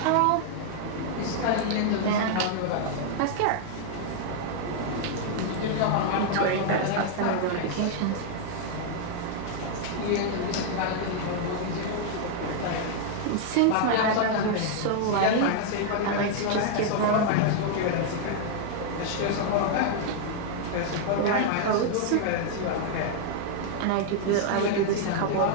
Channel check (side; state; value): both; different; correlation 0.00